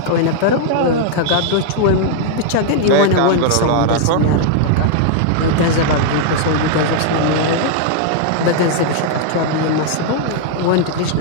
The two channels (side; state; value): both; different; correlation -0.01